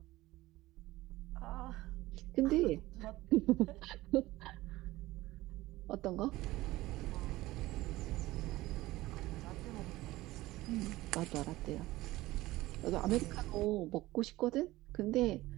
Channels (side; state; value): left; quieter; 18.0 dB